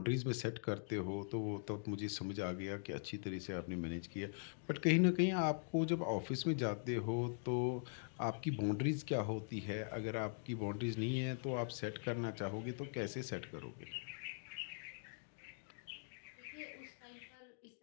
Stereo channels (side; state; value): right; silent; digital silence